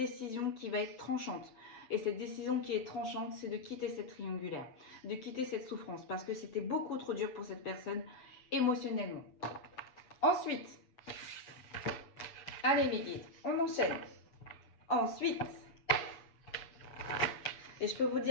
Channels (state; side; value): late; right; 7.5 ms